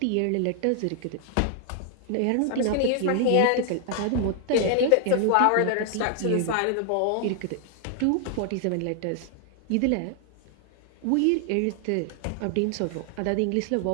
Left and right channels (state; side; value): different; both; correlation 0.00